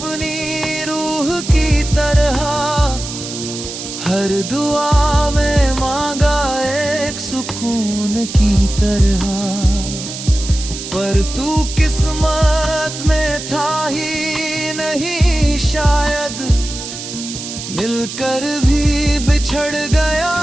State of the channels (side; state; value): right; noise; hiss, 9 dB below the sound